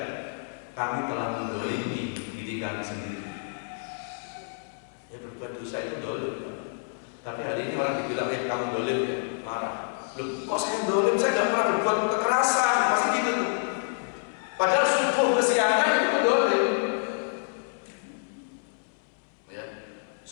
kami telah mendolimi diri kami sendiri. Ya, berbuat dosa itu dolim. Tapi hari ini orang dibilang, kamu dolim ya, marah. Loh, kok saya dolim? Saya nggak pernah berbuat kekerasan, pasti gitu tuh. Padahal subuh kesiangan itu dolim. Ya,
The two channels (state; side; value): silent; right; 59 dB below the other